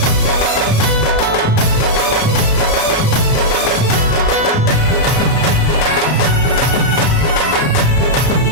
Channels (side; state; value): right; late; 33 ms